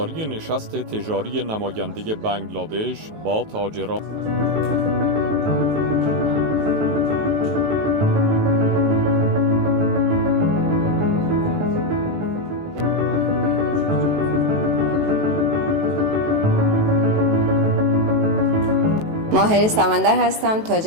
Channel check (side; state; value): left; late; 19 ms